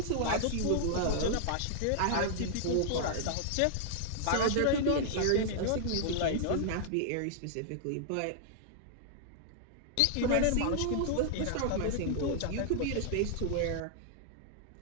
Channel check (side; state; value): both; different; correlation -0.01